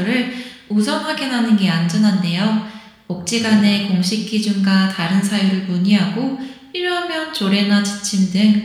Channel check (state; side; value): identical; both; correlation 1.00